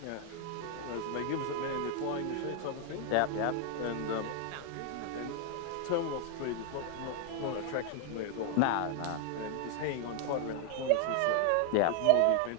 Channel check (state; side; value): different; both; correlation 0.00